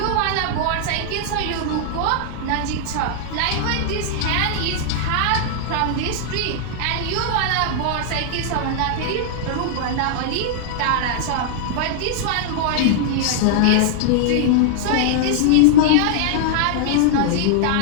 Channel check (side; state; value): both; different; correlation -0.01